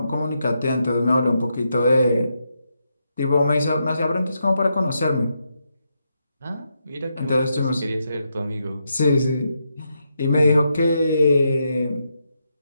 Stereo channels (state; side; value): inverted; both; correlation -0.82